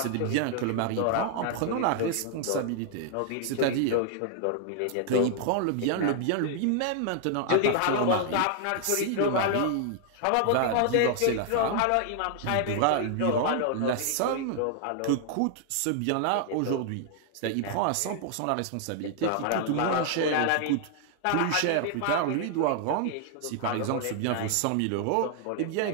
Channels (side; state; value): both; different; correlation 0.00